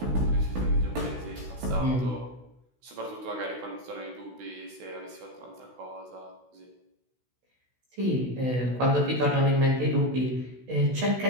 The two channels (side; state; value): left; late; 16 ms